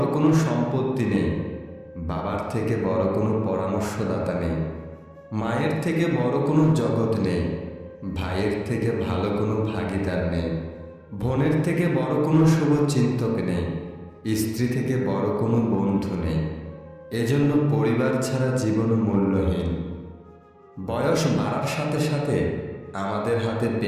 কোনো সম্পত্তি নেই, বাবার থেকে বড় কোনো পরামর্শদাতা নেই, মায়ের থেকে বড় কোনো জগৎ নেই, ভাইয়ের থেকে ভালো কোনো ভাগিদার নেই, বোনের থেকে বড় কোনো শুভচিন্তক নেই, স্ত্রী থেকে বড় কোনো বন্ধু নেই। এজন্য পরিবার ছাড়া জীবন মূল্যহীন। বয়স বাড়ার সাথে সাথে আমাদের হাতে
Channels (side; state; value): both; identical; correlation 1.00